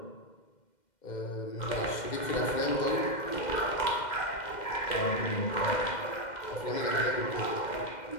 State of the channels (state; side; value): late; right; 2.1 ms